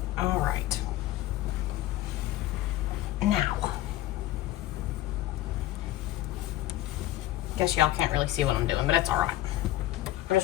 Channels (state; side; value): quieter; right; 15.1 dB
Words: All right. Now. Guess y'all can't really see what I'm doing, but it's all right. I'm